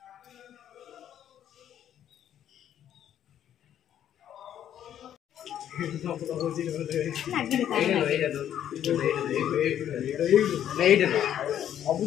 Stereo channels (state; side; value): quieter; right; 10.4 dB